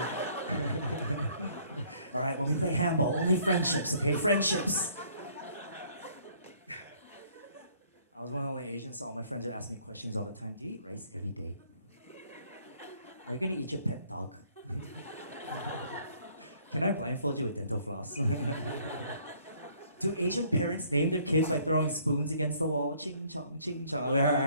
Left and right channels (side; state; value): both; inverted; correlation -0.61